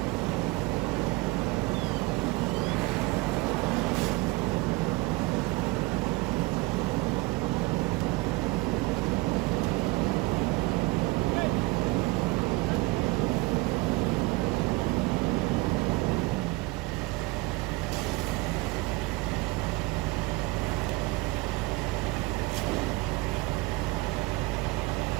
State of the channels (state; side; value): quieter; left; 23.0 dB